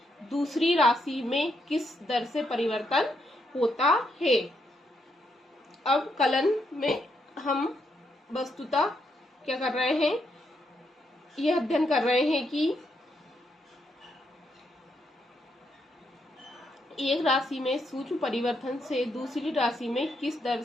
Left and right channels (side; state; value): both; normal; correlation 0.78